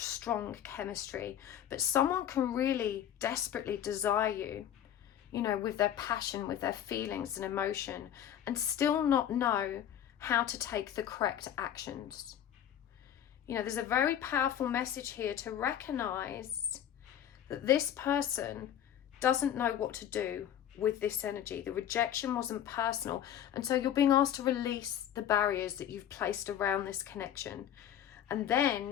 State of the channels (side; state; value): right; quieter; 10.2 dB